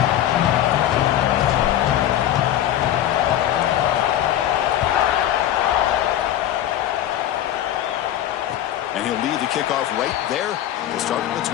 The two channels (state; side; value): quieter; right; 12.0 dB